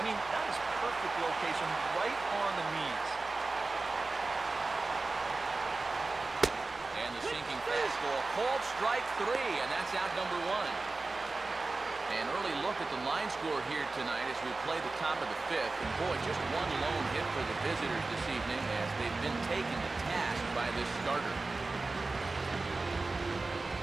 mean, that is perfect location right on the knees. And the sinking fastball called strike 3, and that's out number 1. An early look at the line score here tonight as we play the top of the 5th. And boy, just 1 lone hit for the visitors this evening as they've been taken to task by this starter.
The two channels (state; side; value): quieter; left; 3.5 dB